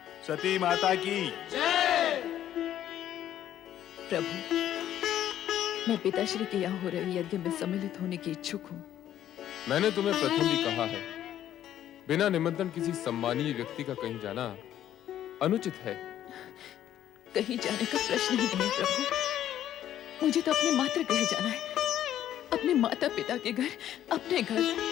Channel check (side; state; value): right; quieter; 11.5 dB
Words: सती माता की प्रभु, मैं पिताश्री के यहाँ हो रहे यज्ञ में सम्मिलित होने की इच्छुक हूँ। मैंने तुम्हें प्रथम भी कहा है, बिना निमंत्रण किसी सम्मानीय व्यक्ति का कहीं जाना अनुचित है। कहीं जाने का प्रश्न ही नहीं प्रभु। मुझे तो अपने मातृ गृह जाना है, अपने माता पिता के घर, अपने घर।